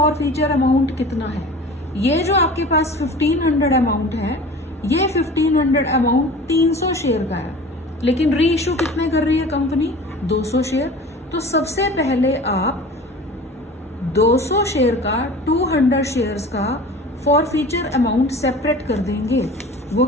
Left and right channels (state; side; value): normal; both; correlation 0.40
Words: फीचर अमाउंट कितना है? ये जो आपके पास 1500 अमाउंट है, ये 1500 अमाउंट 300 शेयर का है, लेकिन री इश्यू कितने कर रही है कंपनी? 200 शेयर। तो सबसे पहले आप 200 शेयर का 200 शेयर्स का फॉर फीचर अमाउंट सेपरेट कर देंगे। वो